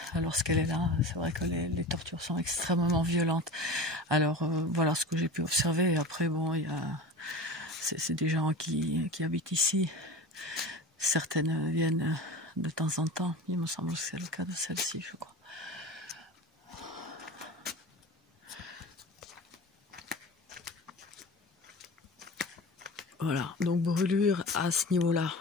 lorsqu'elle est là, c'est vrai que les tortures sont extrêmement violentes. Alors voilà ce que j'ai pu observer. Et après, bon, c'est des gens qui habitent ici. Certaines viennent de temps en temps. Il me semble que c'est le cas de celle-ci, je crois. Voilà, donc brûlure à ce niveau-là.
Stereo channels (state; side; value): normal; both; correlation 0.33